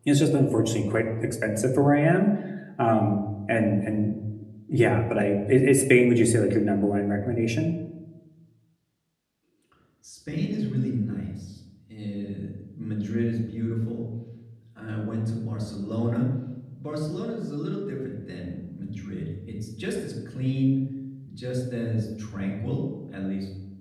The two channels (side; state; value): both; identical; correlation 1.00